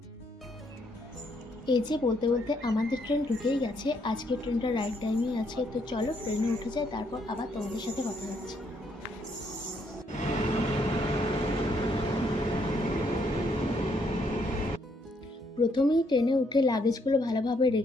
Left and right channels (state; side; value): normal; both; correlation 0.72